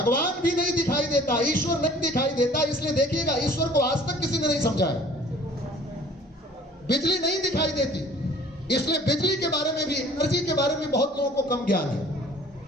भी नहीं दिखाई देता, ईश्वर नहीं दिखाई देता, इसलिए देखिएगा ईश्वर को आज तक किसी ने नहीं समझाया। बिजली नहीं दिखाई देती, इसलिए बिजली के बारे में भी, एनर्जी के बारे में बहुत लोगों को कम ज्ञान है।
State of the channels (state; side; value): normal; both; correlation 0.51